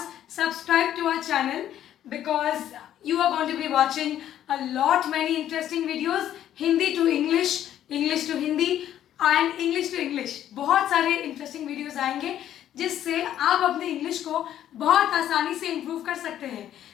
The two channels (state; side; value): quieter; right; 11.3 dB